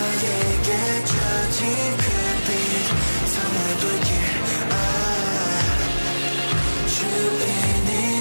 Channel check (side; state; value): both; inverted; correlation -1.00